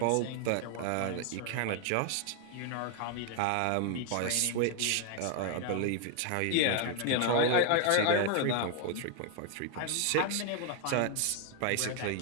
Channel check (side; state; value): both; different; correlation 0.00